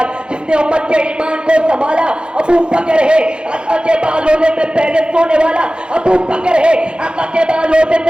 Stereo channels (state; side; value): late; left; 0.051 ms